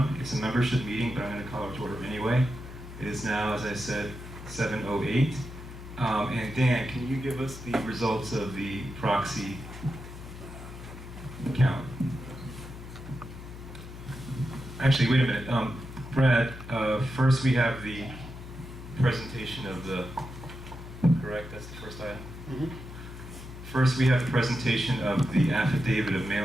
It's a membership meeting, but I'm going to call it to order anyway. It is now, as I said, 7:08. And Dan, can you give us the results of the proxy count? Actually, wait a minute. Brad, first we have the presentation of the, correct? That's the first item? Mm-hmm. First, we have the presentation of the affidavit of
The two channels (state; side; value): noise; left; hum, 13 dB below the sound